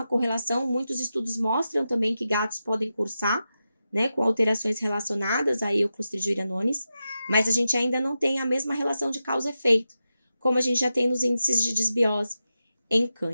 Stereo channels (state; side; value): inverted; both; correlation -0.90